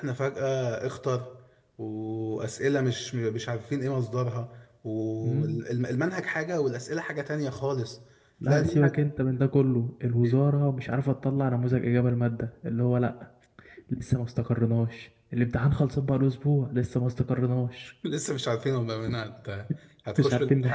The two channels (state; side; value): identical; both; correlation 1.00